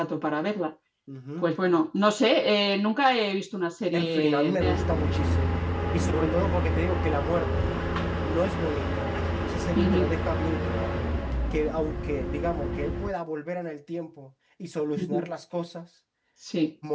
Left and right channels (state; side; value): identical; both; correlation 1.00